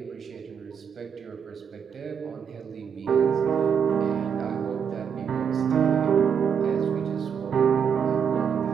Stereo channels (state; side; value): quieter; left; 7.3 dB